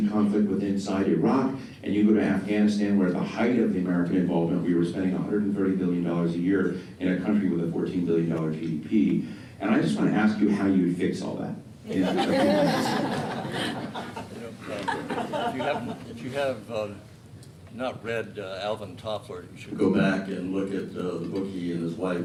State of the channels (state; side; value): identical; both; correlation 1.00